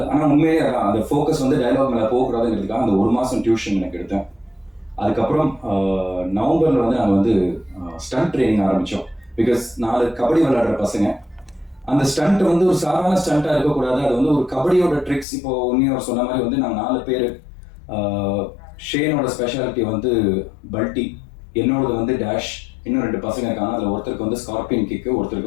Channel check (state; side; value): drops out; right; at 15.2 s